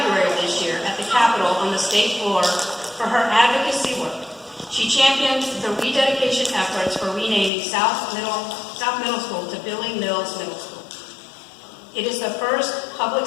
of this year at the Capitol on the state floor for her advocacy work. She championed the rededication efforts for renaming South Middle School to Billy Mills Middle School. It is the first public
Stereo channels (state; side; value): drops out; right; at 7.5 s